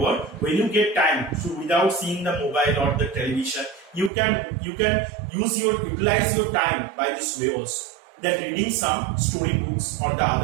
when you get time, so without seeing the mobile or the television, you can utilize your time by this way also. That reading some story books or the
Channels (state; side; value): drops out; left; at 4.1 s